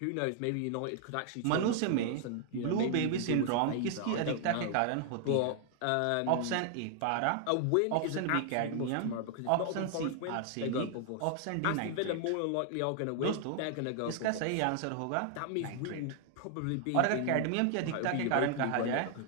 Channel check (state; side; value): different; both; correlation 0.00